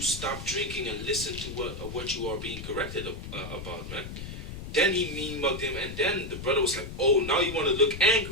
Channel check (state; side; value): noise; left; rumble, 9 dB below the sound